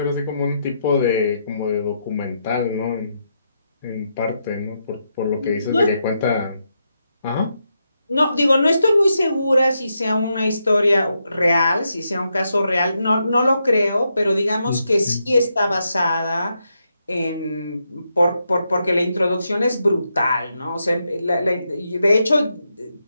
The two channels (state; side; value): inverted; both; correlation -0.82